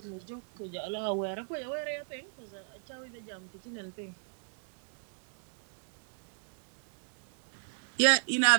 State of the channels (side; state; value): left; silent; 54 dB below the other